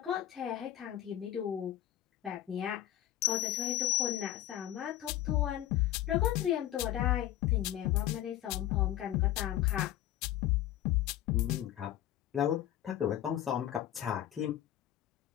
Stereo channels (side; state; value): right; quieter; 12.7 dB